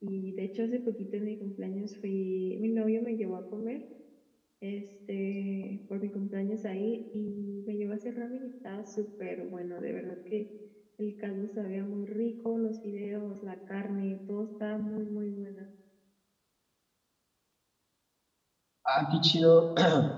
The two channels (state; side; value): identical; both; correlation 1.00